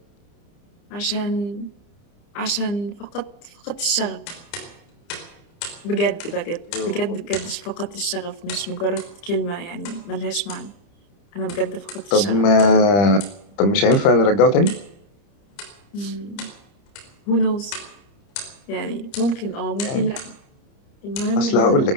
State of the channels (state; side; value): late; right; 30 ms